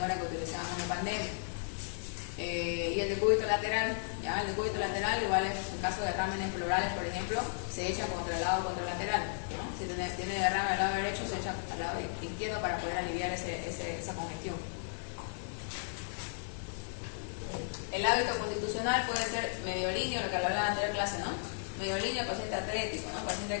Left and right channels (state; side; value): silent; right; 55 dB below the other